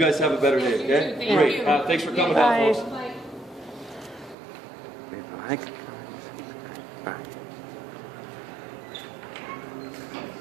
have a better day. Okay. Thank Great. you. Thanks for coming Bye. down, folks. Bye. Bye.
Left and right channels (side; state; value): left; drops out; at 4.4 s